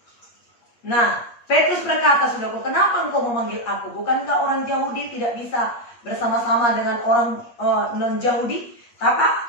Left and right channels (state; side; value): late; right; 8.4 ms